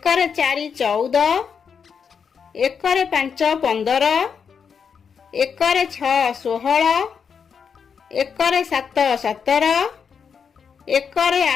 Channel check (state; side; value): quieter; right; 6.6 dB